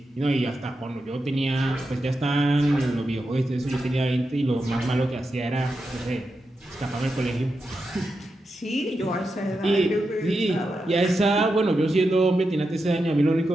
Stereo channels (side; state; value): both; normal; correlation 0.88